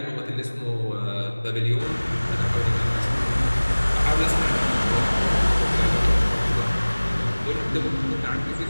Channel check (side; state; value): both; inverted; correlation -1.00